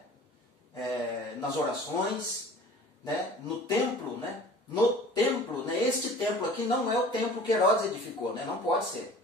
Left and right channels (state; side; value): normal; both; correlation 0.44